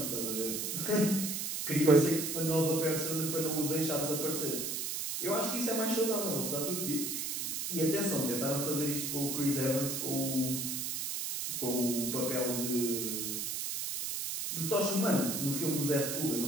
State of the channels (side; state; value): right; noise; hiss, 2 dB below the sound